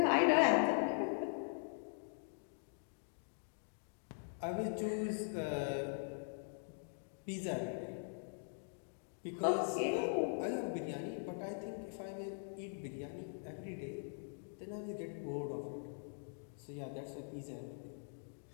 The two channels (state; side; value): silent; right; digital silence